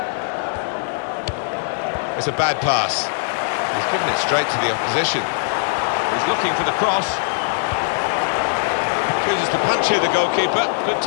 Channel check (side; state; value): right; silent; digital silence